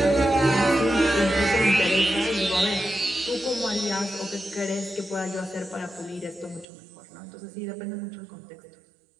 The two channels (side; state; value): left; drops out; at 6.7 s